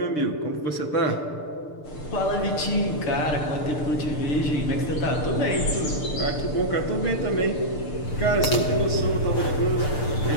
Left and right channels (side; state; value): right; late; 6.7 ms